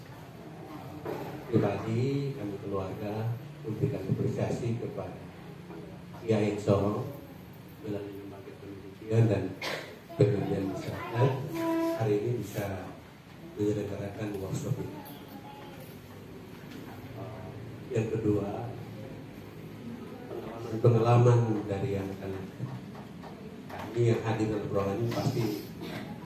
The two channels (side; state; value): both; identical; correlation 1.00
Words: pribadi kami keluarga memberikan apresiasi kepada Kiai Sorong melalui lembaga pendidikan dan pengabdian masyarakat hari ini bisa menyelenggarakan workshop ini. Yang kedua, pengalaman dari yang kami yang hadir dalam program ini pasti